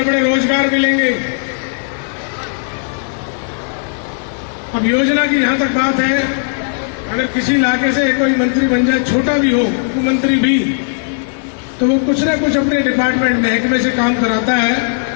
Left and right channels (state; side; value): silent; right; digital silence